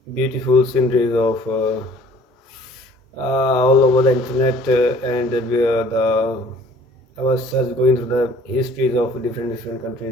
beautiful sceneries of all over the internet and the I was just going through the histories of different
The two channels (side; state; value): both; normal; correlation 0.52